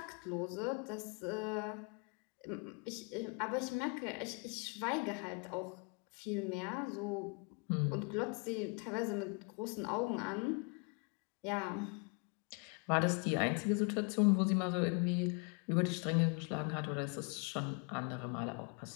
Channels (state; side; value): quieter; right; 33.5 dB